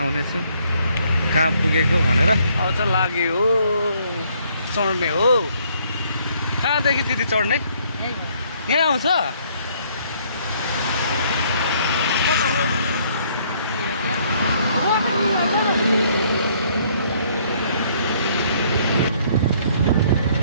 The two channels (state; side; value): inverted; both; correlation -0.65